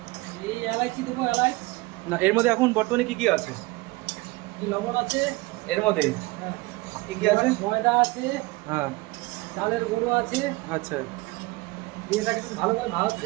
এই এলাইচি দেবো, এলাইচ। না, এর মধ্যে এখন বর্তমানে কি কি আছে? লবণ আছে এর মধ্যে হ্যাঁ, কি কি আছে? ময়দা আছে, হ্যাঁ, চালের গুঁড়ো আছে। আচ্ছা দিয়ে এটাকে একটু ভালো করে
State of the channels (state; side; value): quieter; left; 22.4 dB